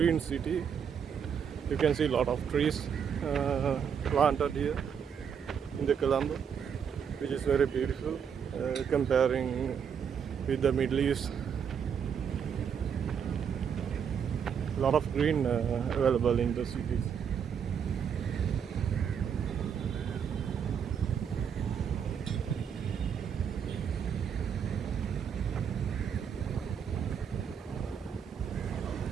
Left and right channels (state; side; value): quieter; left; 7.5 dB